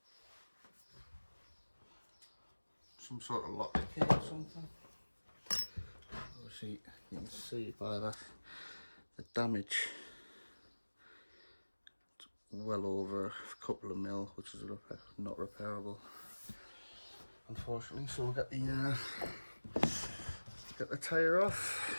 Some sort of lock key or something. Obviously, you can see by that the damage. It's well over a couple of mil, which is not repairable, unfortunately. So we'll get the tyre off,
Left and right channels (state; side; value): inverted; both; correlation -1.00